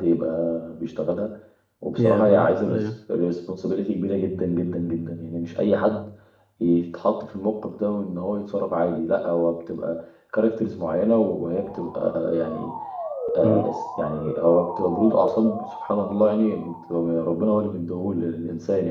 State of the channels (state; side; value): identical; both; correlation 1.00